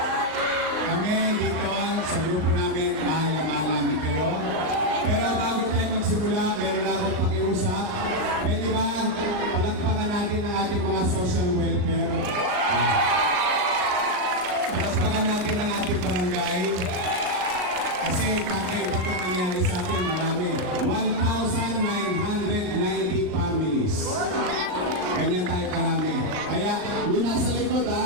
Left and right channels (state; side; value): late; left; 39 ms